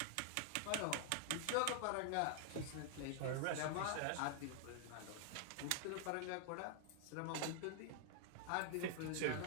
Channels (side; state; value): both; different; correlation -0.01